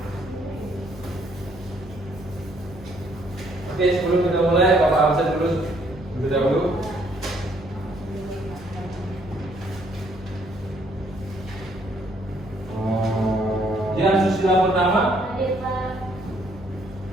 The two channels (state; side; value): normal; both; correlation 0.66